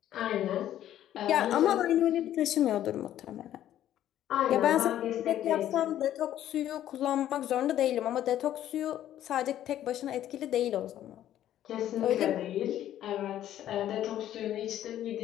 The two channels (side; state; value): right; quieter; 12.0 dB